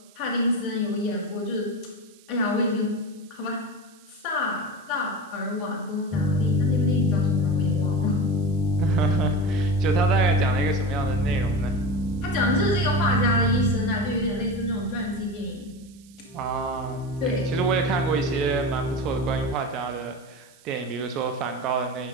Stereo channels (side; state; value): right; noise; hiss, 27 dB below the sound